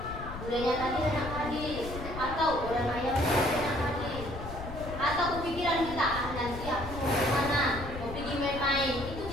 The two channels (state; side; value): noise; left; rumble, 9 dB below the sound